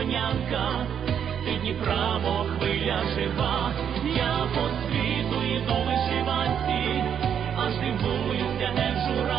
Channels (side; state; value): left; quieter; 8.4 dB